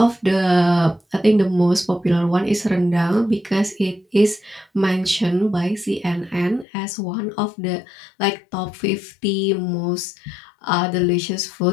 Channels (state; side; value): drops out; right; at 6.7 s